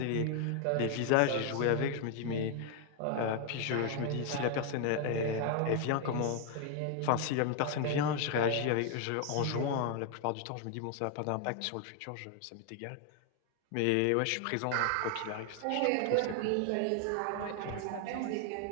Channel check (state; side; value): different; both; correlation 0.00